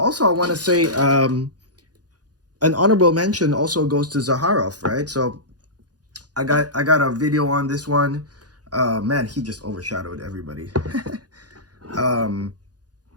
I want to say an honorable mention also goes to Zaharoff, right? So I got a video on this one. Man, he just overshadowed everybody.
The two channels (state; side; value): late; left; 0.69 ms